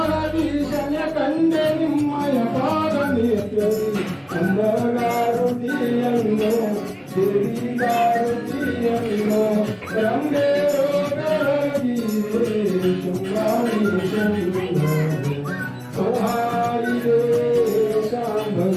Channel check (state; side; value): identical; both; correlation 1.00